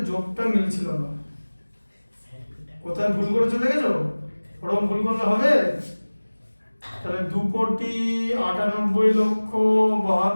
যোগটা মিলছিল না, কোথায় ভুল করেছো দেখেছো? ওরকম ভুল করলে হবে? তাহলে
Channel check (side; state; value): both; inverted; correlation -1.00